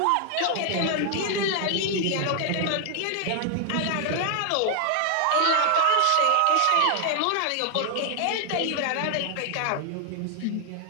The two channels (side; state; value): both; different; correlation 0.00